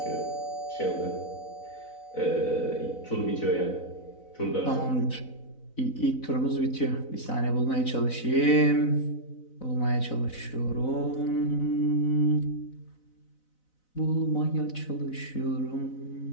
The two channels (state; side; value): late; right; 4.0 ms